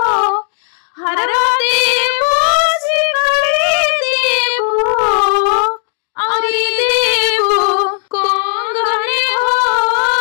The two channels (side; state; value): right; silent; 71 dB below the other